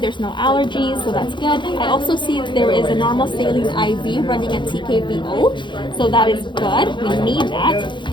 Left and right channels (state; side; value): late; right; 0.23 ms